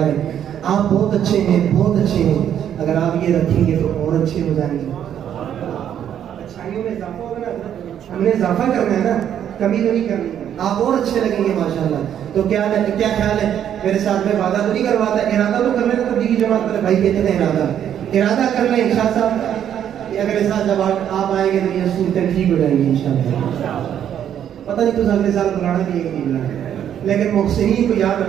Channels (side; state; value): left; quieter; 9.7 dB